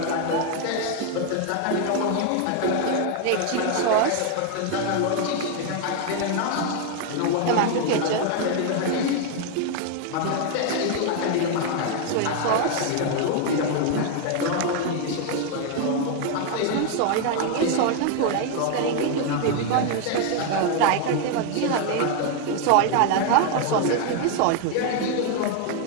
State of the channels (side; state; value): both; different; correlation 0.01